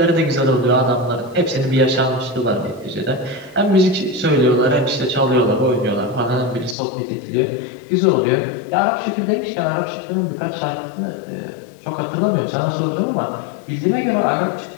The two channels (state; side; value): drops out; right; at 6.8 s